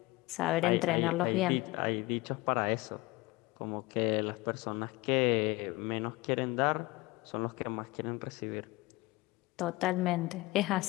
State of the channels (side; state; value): right; quieter; 21.5 dB